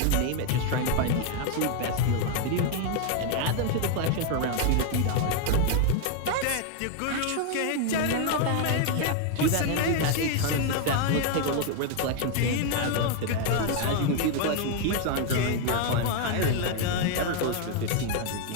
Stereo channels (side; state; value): both; different; correlation 0.01